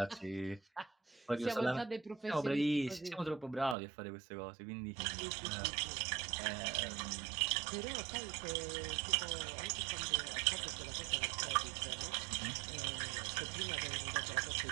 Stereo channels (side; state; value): left; drops out; at 3.8 s